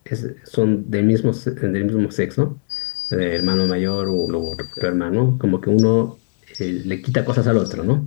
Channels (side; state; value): right; silent; 66 dB below the other